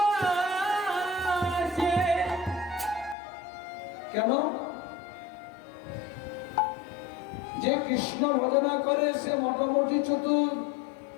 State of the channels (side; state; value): right; drops out; at 3.2 s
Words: কেন যে কৃষ্ণ ভজনা করে সে মোটামুটি চতুর